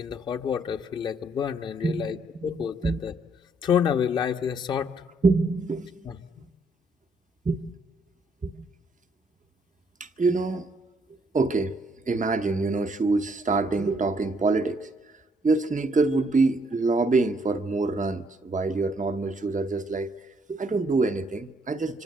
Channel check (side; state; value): both; normal; correlation 0.69